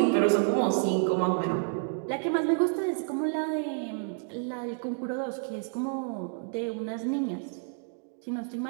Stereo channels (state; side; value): silent; left; 58 dB below the other